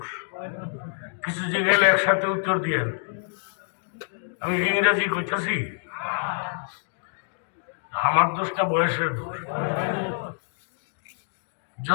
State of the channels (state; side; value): silent; right; digital silence